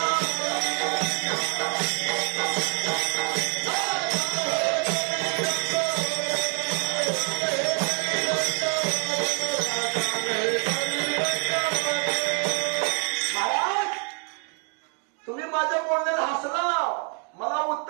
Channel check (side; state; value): left; quieter; 36.9 dB